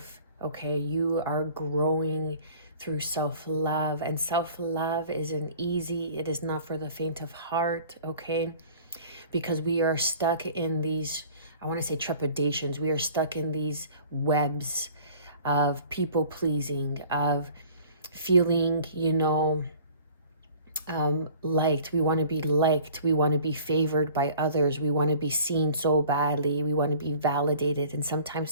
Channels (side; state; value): both; inverted; correlation -0.48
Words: Okay, you are growing through self-love, and self-love isn't easy. It is not for the faint of heart. Okay, because we are stuck in these, I want to say, trepidations. We are stuck in these webs of people pleasing, of feeling, liked. We want to be liked. We want to be favored by others. We want to be seen so badly. We want to be validated. And sometimes